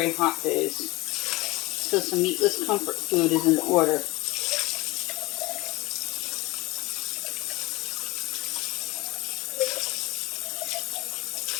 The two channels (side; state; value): right; quieter; 21.7 dB